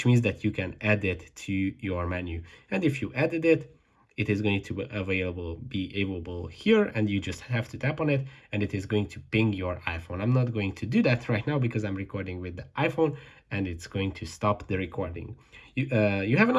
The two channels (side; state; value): both; identical; correlation 1.00